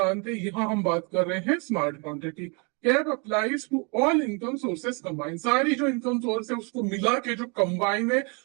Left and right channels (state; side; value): quieter; left; 33.5 dB